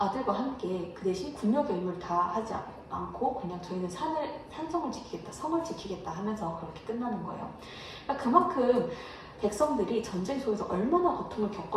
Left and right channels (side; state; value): both; identical; correlation 1.00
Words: 함께 그 대신 군역의 의무를 다 하지 않고 그냥 저희는 산성을 지키겠다, 성을 지키겠다 하면서 그렇게 끝나는 거예요. 그러니까 그만큼 백성들이 전쟁 속에서 얼마나 고통을